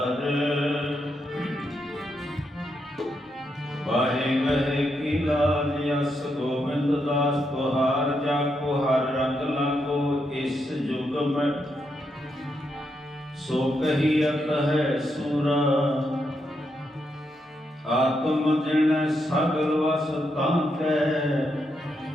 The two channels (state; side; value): normal; both; correlation 0.81